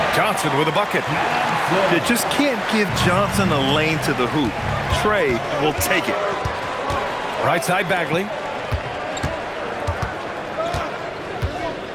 Johnson with a bucket. You just can't give Johnson a lane to the hoop. Trey will take it. Right side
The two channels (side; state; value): both; identical; correlation 1.00